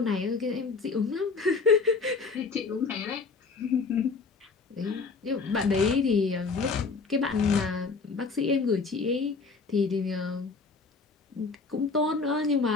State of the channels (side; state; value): right; quieter; 4.5 dB